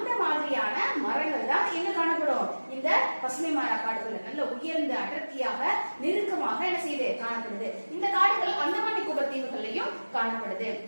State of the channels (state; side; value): inverted; both; correlation -1.00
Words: மாதிரியான மரங்கள் தான் எங்க காணப்படும், இந்த பசுமை மாறா காடுகள். நல்ல உயர்ந்த அடர்த்தியாக நெருக்கமாக என்ன செய்யுது, காணப்படுது. இந்த காடுகள் அந்தமான் நிக்கோபார் தீவுகள்லயும் காணப்படுது.